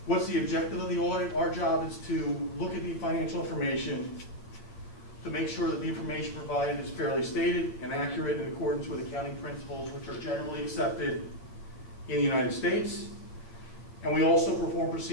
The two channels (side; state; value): right; late; 8.6 ms